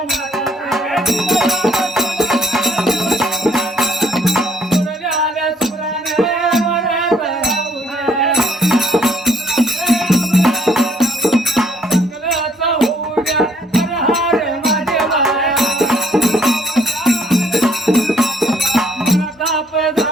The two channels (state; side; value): normal; both; correlation 0.65